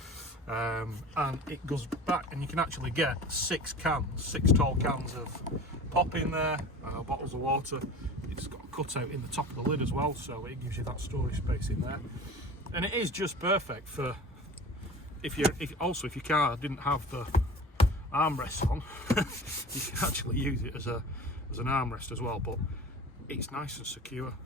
And it goes back, and you can actually get 6 tall cans of pop in there, bottles of water. It's got a cutout in the top of the lid as well, so it gives you that storage space in there. And it is just perfect for if your car didn't have the armrests on, you can actually use it as an armrest as well. But it's nice and secure,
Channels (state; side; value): normal; both; correlation 0.38